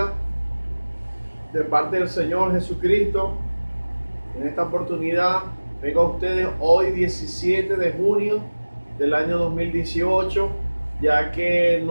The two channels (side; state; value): both; inverted; correlation -1.00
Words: de parte del Señor Jesucristo. En esta oportunidad vengo a ustedes hoy 17 de junio del año 2018, ya que